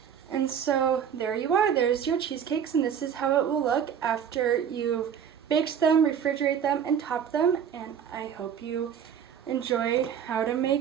And so there you are, there's your cheesecakes, and this is how it will look after you've baked them, refrigerate them, and top them. And I hope you enjoyed how to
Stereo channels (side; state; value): left; quieter; 8.2 dB